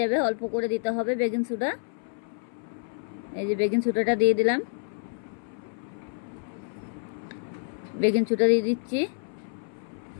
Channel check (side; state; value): right; silent; 59 dB below the other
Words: অল্প করে দিতে হবে বেকিং সোডা। এই যে বেকিং সোডাটা দিয়ে দিলাম, বেকিং সোডা দিয়ে দিচ্ছি।